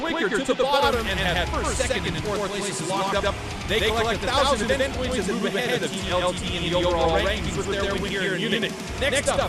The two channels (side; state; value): both; identical; correlation 1.00